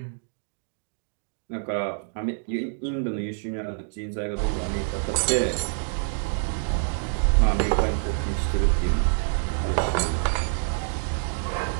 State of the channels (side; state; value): left; silent; digital silence